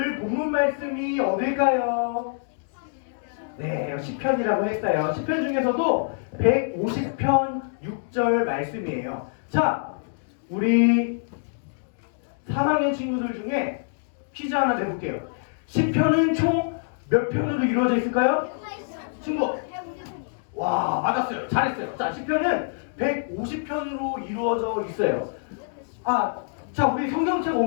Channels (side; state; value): right; silent; digital silence